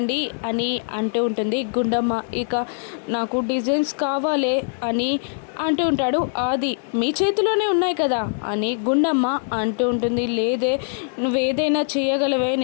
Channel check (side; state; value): right; silent; digital silence